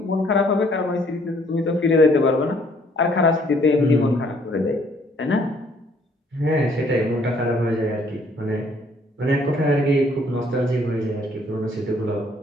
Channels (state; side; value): normal; both; correlation 0.63